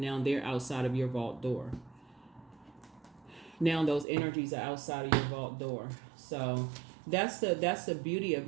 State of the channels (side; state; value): left; drops out; at 4.0 s